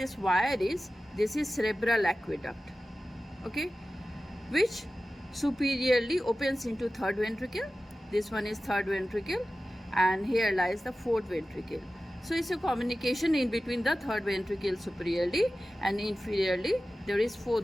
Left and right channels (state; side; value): normal; both; correlation 0.95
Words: wire is, this is cerebral aqueduct. Okay, which superiorly opens into third ventricle. This one is third ventricle, and here lies the fourth ventricle. So it's a communication in between the third ventricle superiorly, and inferiorly there is